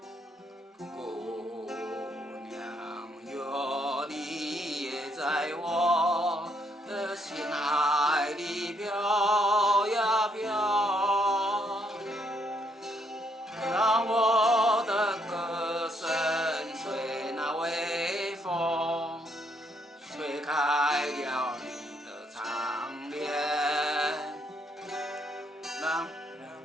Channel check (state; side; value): normal; both; correlation 0.73